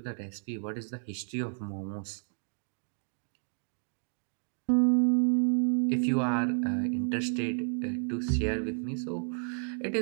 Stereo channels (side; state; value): left; silent; 57 dB below the other